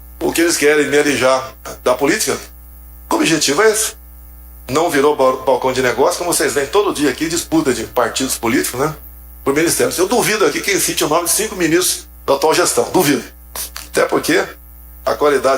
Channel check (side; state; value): both; identical; correlation 1.00